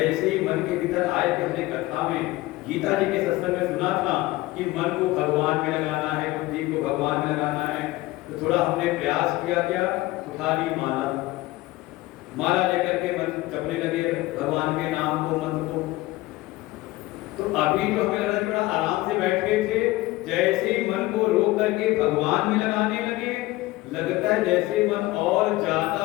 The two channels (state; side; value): quieter; right; 18.8 dB